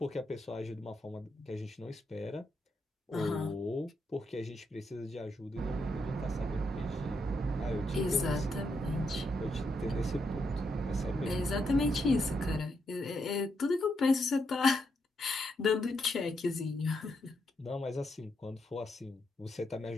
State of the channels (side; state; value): both; normal; correlation 0.80